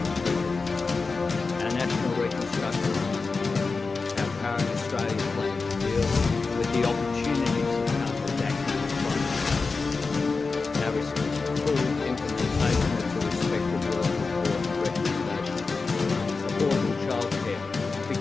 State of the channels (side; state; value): right; quieter; 4.2 dB